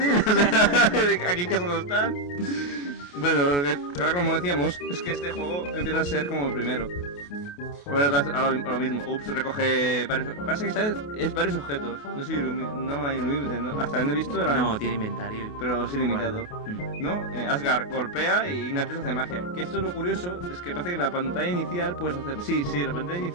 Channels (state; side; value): late; right; 28 ms